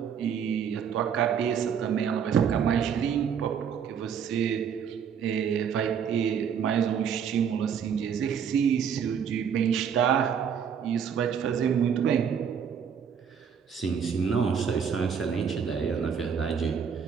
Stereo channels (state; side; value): quieter; left; 7.5 dB